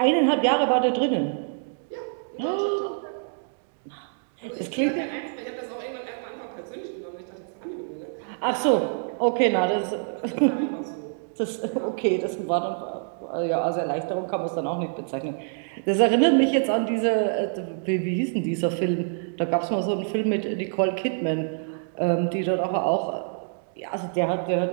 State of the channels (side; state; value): left; silent; digital silence